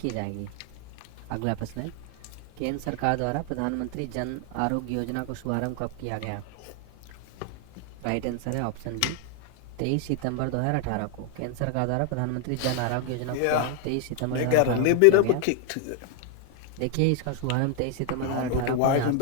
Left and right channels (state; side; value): different; both; correlation 0.00